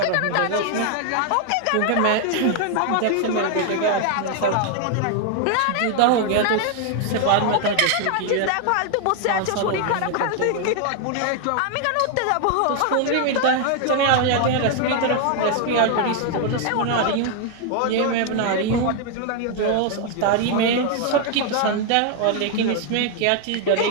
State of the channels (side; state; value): both; different; correlation 0.00